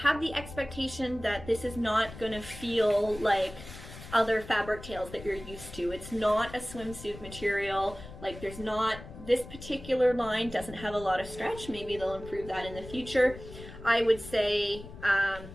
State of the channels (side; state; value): left; noise; rumble, 14 dB below the sound